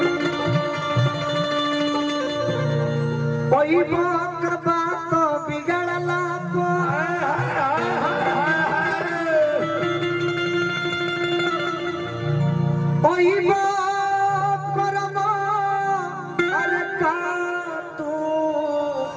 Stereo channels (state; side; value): identical; both; correlation 1.00